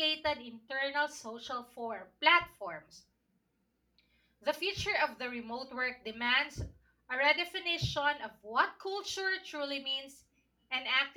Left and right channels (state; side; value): identical; both; correlation 1.00